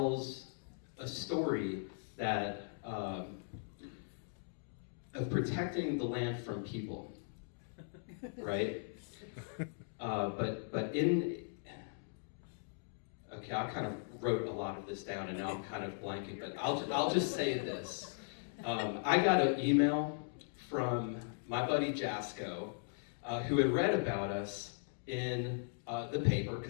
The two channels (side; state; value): right; silent; digital silence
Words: a story that of protecting the land from people, right? Okay, I kind of wrote a lot of this down, and now I'm kind of blanking, but I'll just say this. I got an email from my buddy Jasco, who had read about us in the paper,